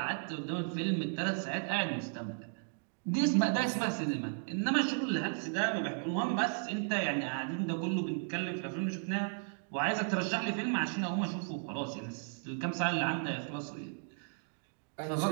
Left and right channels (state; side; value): silent; left; 54 dB below the other